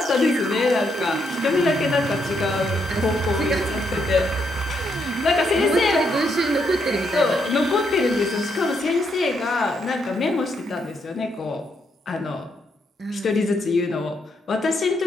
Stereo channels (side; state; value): both; normal; correlation 0.77